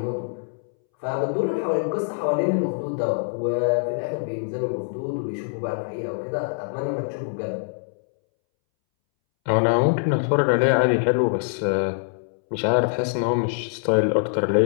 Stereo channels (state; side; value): silent; right; 63 dB below the other